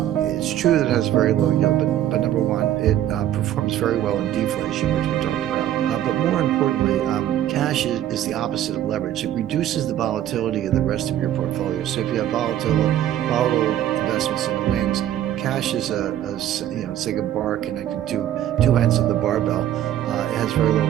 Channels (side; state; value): left; quieter; 11.8 dB